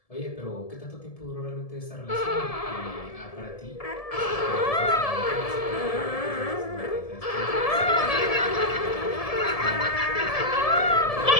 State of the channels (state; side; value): late; right; 1.7 ms